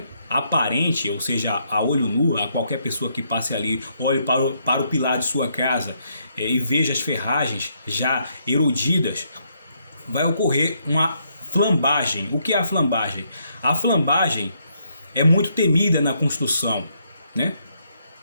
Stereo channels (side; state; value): both; inverted; correlation -0.74